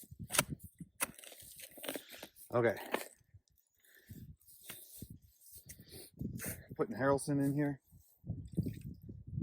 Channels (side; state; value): both; identical; correlation 1.00